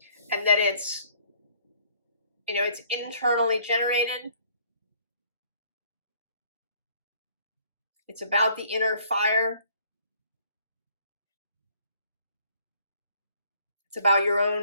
And that it's, you know, it's internally generated. It's about the inner fire. It's about your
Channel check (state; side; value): inverted; both; correlation -0.60